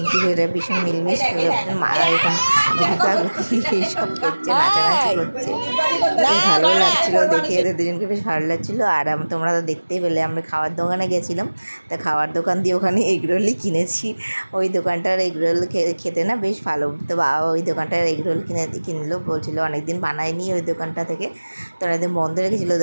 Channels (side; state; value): both; inverted; correlation -1.00